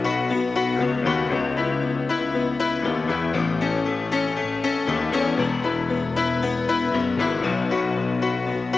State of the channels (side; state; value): right; quieter; 3.6 dB